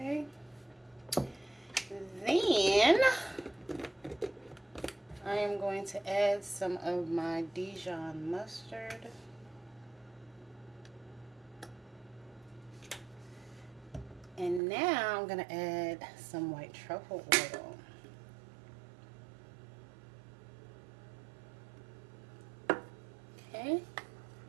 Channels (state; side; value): drops out; left; at 14.6 s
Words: Then I am going to add some of my Dijon mustard. And now I'm going to add some white truffle oil. Okay.